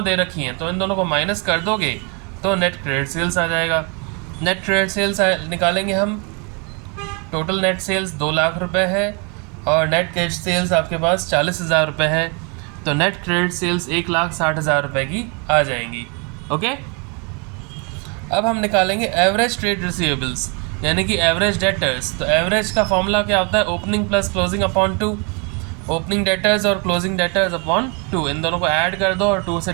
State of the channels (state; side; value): quieter; left; 33.8 dB